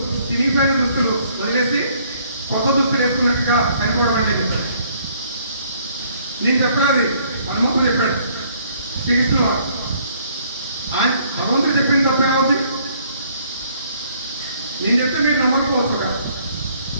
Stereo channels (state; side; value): inverted; both; correlation -0.63